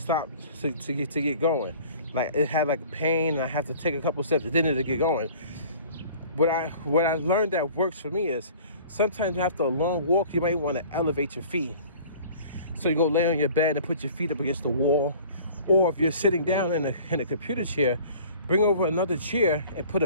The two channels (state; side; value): inverted; both; correlation -0.47